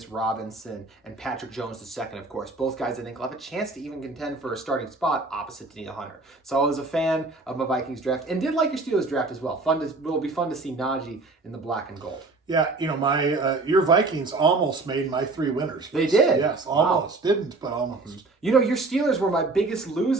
Robinson and Patrick Jones II, of course. Both guys I think will have a chance to even contend for a starting spot opposite Danielle Hunter. So I was a fan of my Vikings draft and did like your Steelers draft as well. It'll be fun to see Najee in the black and gold. Yeah, your Vikings almost made my 3 winners. They did? Yes, almost. Wow. Didn't, but almost. Your Steelers were my biggest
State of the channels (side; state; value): left; quieter; 3.5 dB